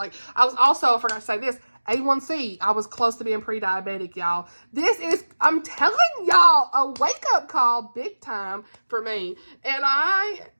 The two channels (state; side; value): inverted; both; correlation -1.00